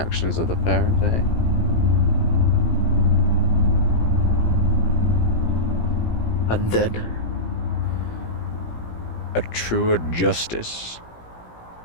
of the parent, eh? And then? A truer justice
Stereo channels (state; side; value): late; right; 17 ms